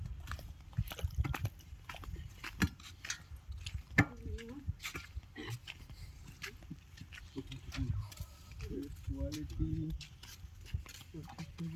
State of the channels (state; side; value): identical; both; correlation 1.00